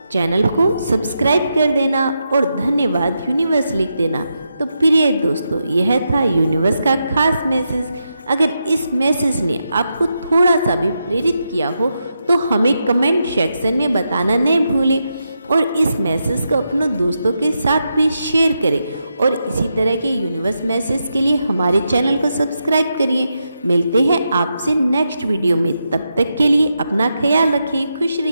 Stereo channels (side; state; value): both; inverted; correlation -0.85